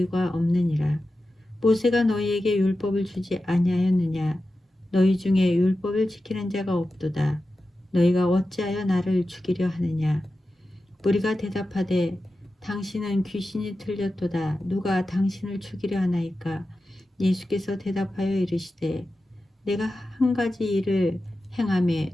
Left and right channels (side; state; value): both; normal; correlation 0.93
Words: 없느니라. 모세가 너희에게 율법을 주지 아니하였느냐? 너희 중에 율법을 지키는 자가 없도다. 너희가 어찌하여 나를 죽이려 하느냐? 무리가 대답하되 당신은 귀신이 들렸도다. 누가 당신을 죽이려 하나이까? 예수께서 대답하여 이르시되 내가 한 가지 일을 행하매